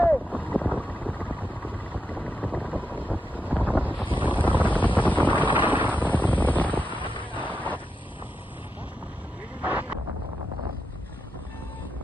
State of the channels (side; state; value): both; normal; correlation 0.86